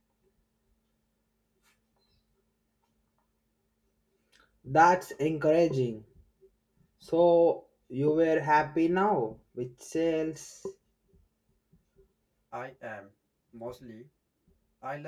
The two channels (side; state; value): both; identical; correlation 1.00